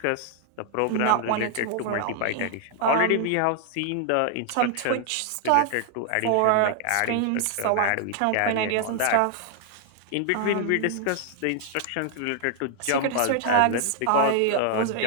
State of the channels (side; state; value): both; different; correlation 0.00